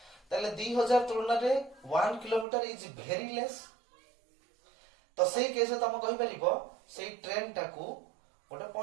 ताले 2000 तुलना रे 1 किलोमीटर इज वेरी लेस तो सही केस तुम कहि परिबो सही ट्रेन टा को गोटे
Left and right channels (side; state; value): left; drops out; at 2.5 s